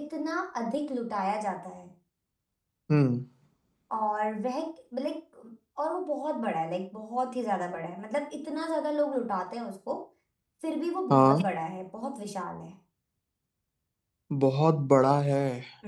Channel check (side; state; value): both; identical; correlation 1.00